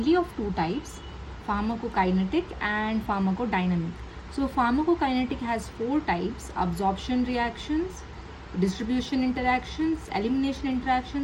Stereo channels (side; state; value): both; identical; correlation 1.00